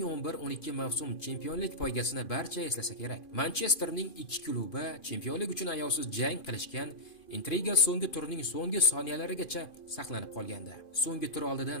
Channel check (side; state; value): right; late; 2.5 ms